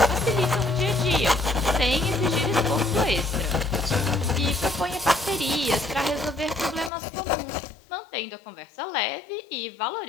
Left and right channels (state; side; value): drops out; right; at 6.9 s